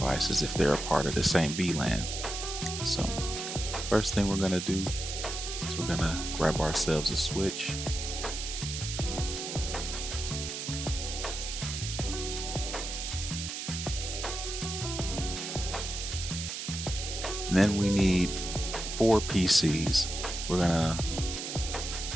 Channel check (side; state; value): right; noise; hiss, 5 dB below the sound